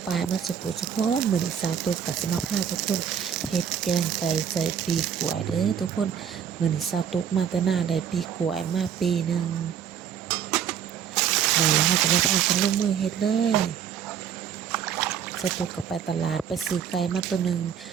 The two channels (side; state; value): left; quieter; 8.4 dB